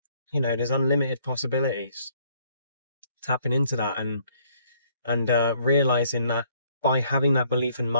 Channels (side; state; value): both; inverted; correlation -0.65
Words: there's unlimited possibilities. Tapping into that and realizing that by having that belief and